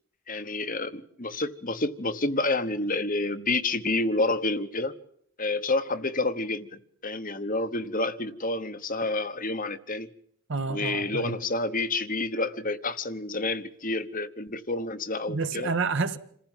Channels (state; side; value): normal; both; correlation 0.18